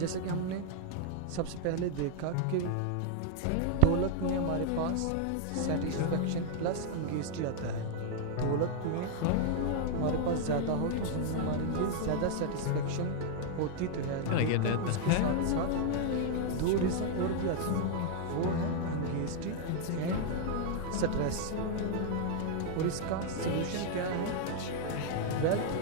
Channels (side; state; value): both; different; correlation 0.00